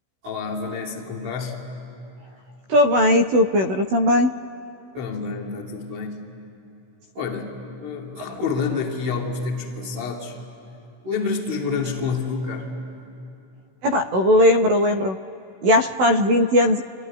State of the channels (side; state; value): left; late; 16 ms